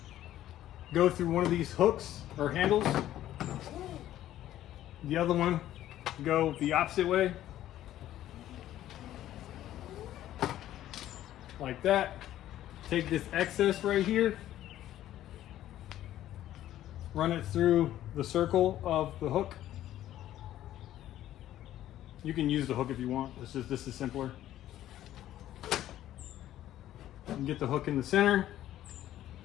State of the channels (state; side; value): quieter; right; 13.0 dB